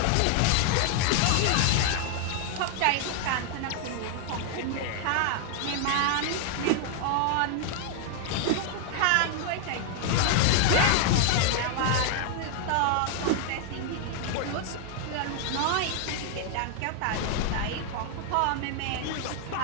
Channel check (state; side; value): different; both; correlation 0.00